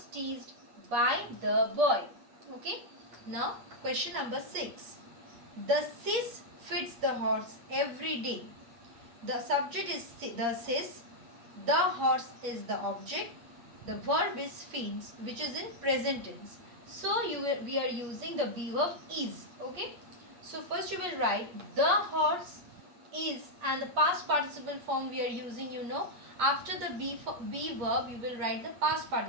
teased by the boy. Okay. Now question number 6. The sis feeds the horse every day. The subject is the sis. The horse is the object. The verb is feeds, which is in present tense. So we are using the be verb is. Okay. So first you will write the horse is, and the past participle form we are using, after the be verb you will write the past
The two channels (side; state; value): left; late; 8.4 ms